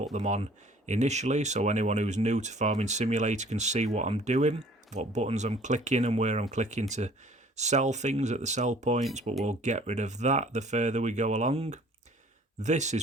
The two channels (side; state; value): both; normal; correlation 0.53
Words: them on initially so anyone who's new to Farming Simulator can see what I'm doing, what buttons I'm clicking and where I'm clicking to sell things at the sell points, but we'll get rid of that the further we go along. This